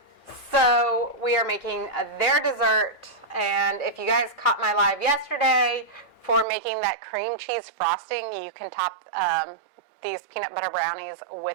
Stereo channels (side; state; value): left; drops out; at 6.5 s